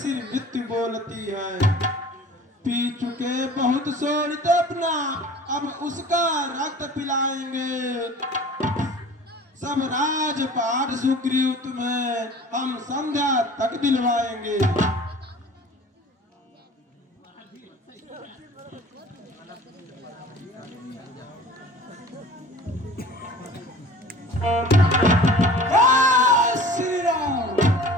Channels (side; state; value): both; normal; correlation 0.44